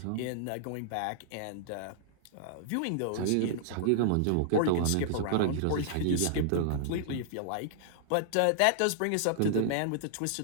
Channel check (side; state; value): both; different; correlation -0.01